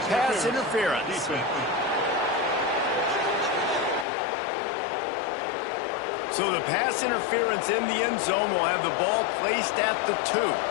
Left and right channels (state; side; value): drops out; right; at 4.0 s